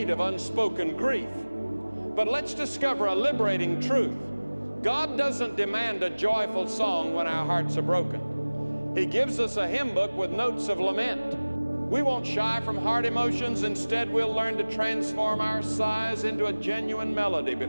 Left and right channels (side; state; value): both; inverted; correlation -1.00